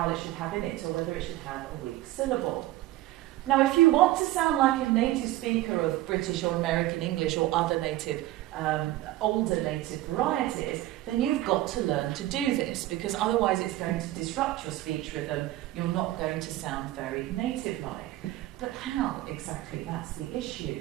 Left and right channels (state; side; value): quieter; left; 15.9 dB